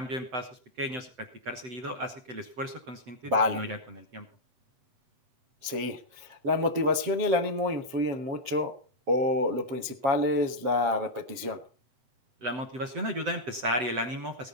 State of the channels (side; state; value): left; late; 7.4 ms